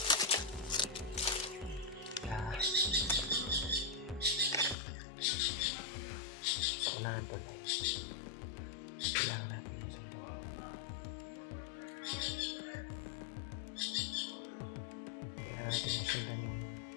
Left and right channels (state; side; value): drops out; right; at 4.8 s